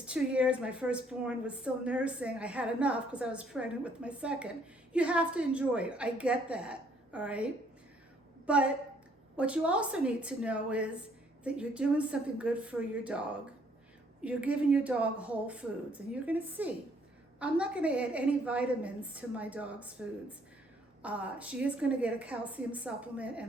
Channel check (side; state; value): both; normal; correlation 0.65